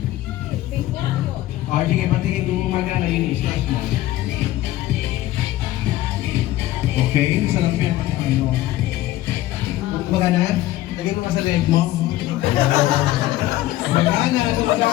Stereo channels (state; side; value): quieter; right; 15.3 dB